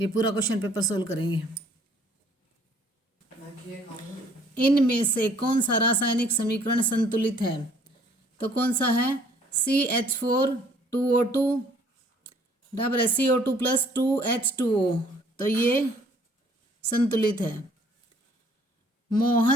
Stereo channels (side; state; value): both; normal; correlation 0.59